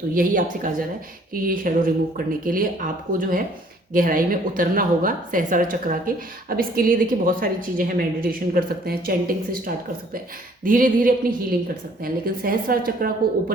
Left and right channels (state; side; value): normal; both; correlation 0.59